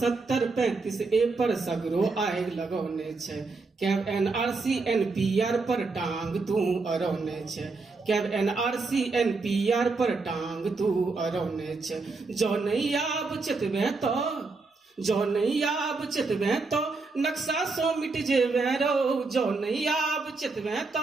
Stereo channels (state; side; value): quieter; left; 3.9 dB